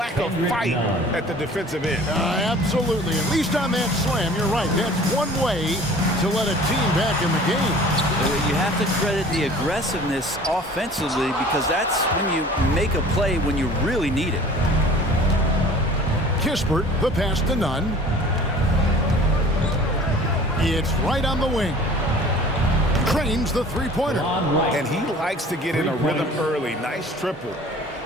of fight at the defensive end. Absolutely. At least on that slam, you're right. That's one way to let a team back in the game. You have to credit the aggressiveness offensively because that's when you make a play when you really need it. Kispert, the pass to Nunn. It's right on the wing. Trains the three-pointer. And he likes to get in a rhythm early. Nice triple.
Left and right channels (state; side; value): normal; both; correlation 0.47